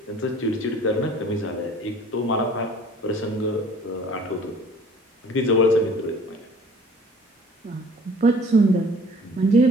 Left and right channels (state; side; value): normal; both; correlation 0.50